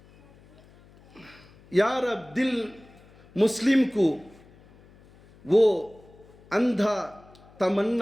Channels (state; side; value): noise; left; hum, 26 dB below the sound